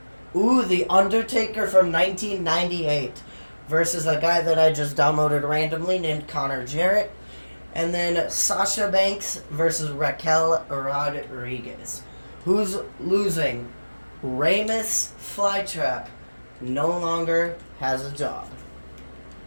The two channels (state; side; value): inverted; both; correlation -1.00